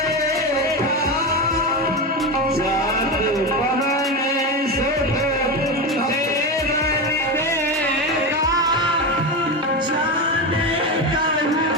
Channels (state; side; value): normal; both; correlation 0.18